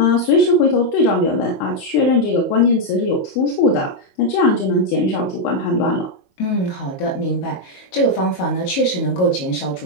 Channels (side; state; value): right; late; 22 ms